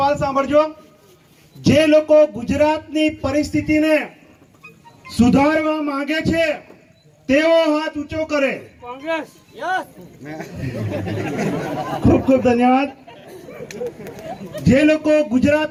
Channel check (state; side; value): identical; both; correlation 1.00